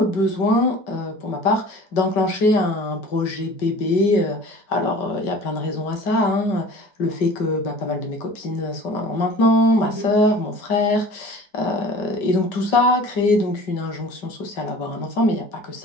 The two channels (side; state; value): right; late; 5.2 ms